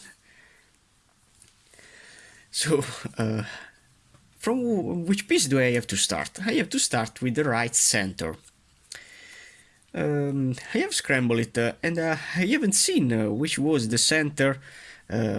So from which piece do I have to start? I have to start with the right center. I have scrambled it, and I haven't seen which was the center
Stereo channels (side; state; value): both; identical; correlation 1.00